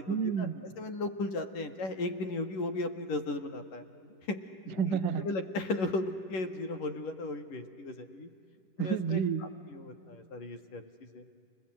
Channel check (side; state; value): right; late; 11 ms